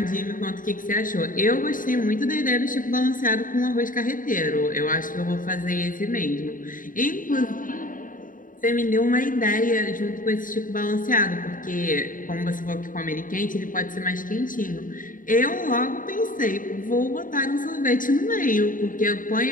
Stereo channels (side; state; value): right; late; 0.39 ms